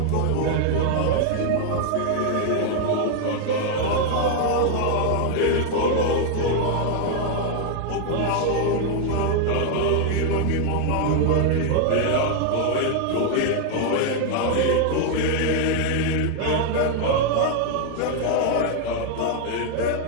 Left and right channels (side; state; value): both; different; correlation 0.00